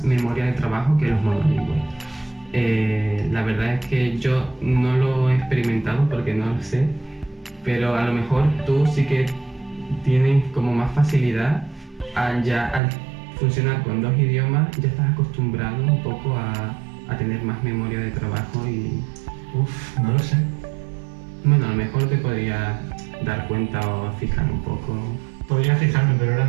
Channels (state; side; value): drops out; left; at 12.8 s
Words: memoria de trabajo que los monolingües. La verdad es que yo no lo he experimentado porque no lo sé, pero a lo mejor tú sí que tienes como más facilidad al funcionar con dos idiomas, ya estás acostumbrado un poco a tener más memoria de trabajo y... No lo sé. Bueno, a lo mejor te podría dar cuenta o fijar un poco. Podría fijarme, pero ahora